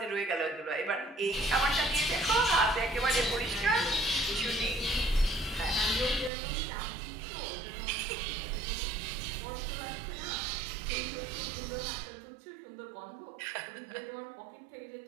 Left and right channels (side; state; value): left; drops out; at 6.3 s